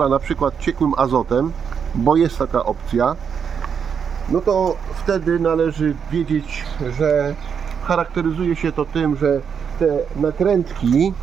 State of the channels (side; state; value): left; quieter; 7.0 dB